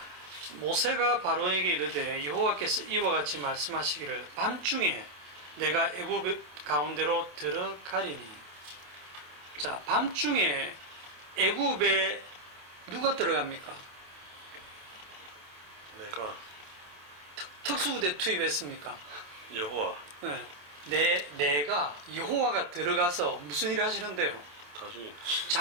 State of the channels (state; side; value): late; left; 27 ms